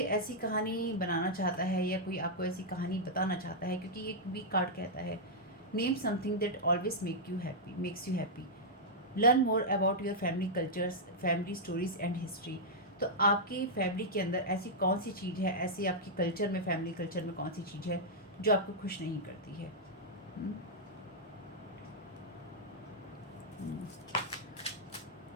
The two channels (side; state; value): both; normal; correlation -0.07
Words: ऐसी कहानी बनाना चाहता है या कोई आपको ऐसी कहानी बताना चाहता है, क्योंकि ये वीक कार्ड कहता है name something that always makes you happy, learn more about your family cultures, family stories and history. तो आपकी फैमिली के अंदर ऐसी कौन सी चीज़ है, ऐसी आपकी कल्चर में, फैमिली कल्चर में कौन सी चीज़ है जो आपको खुश नहीं करती है।